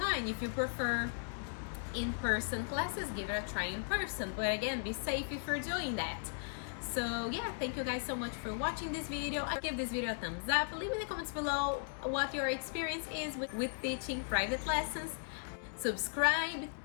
If you prefer in-person classes, give it a try in person. But again, be safe if you're doing that. So yeah, thank you guys so much for watching this video. Give this video a thumbs up. Leave in the comments below what your experience is with teaching private lessons. Subscribe,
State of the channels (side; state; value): right; silent; digital silence